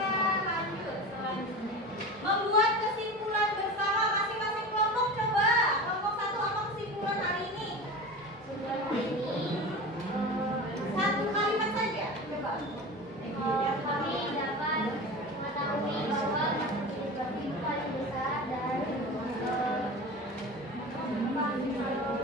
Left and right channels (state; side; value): normal; both; correlation 0.31